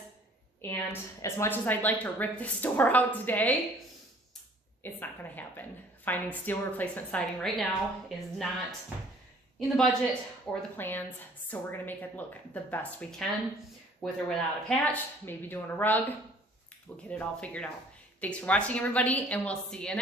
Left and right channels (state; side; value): normal; both; correlation 0.55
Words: And as much as I'd like to rip this door out today, it's not gonna happen. Finding steel replacement siding right now is not in the budget or the plans, so we're gonna make it look the best we can, with or without a patch, maybe doing a rug. We'll get it all figured out. Thanks for watching everybody, and we'll see you